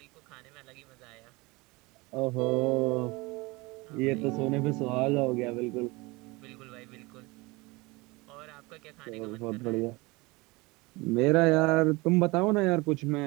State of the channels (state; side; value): quieter; left; 24.0 dB